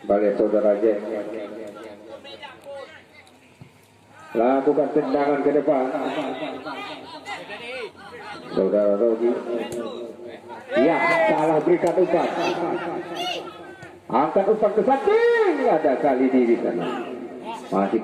saudara Jack. Lakukan tendangan ke depan. Saudara Rogi. Ya, salah berikan umpan. Angkat umpan ke samping. Ada kali di sana. Masih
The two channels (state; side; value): identical; both; correlation 1.00